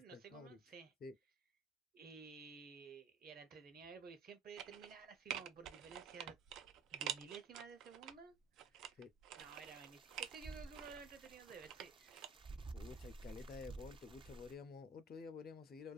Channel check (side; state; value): left; quieter; 4.2 dB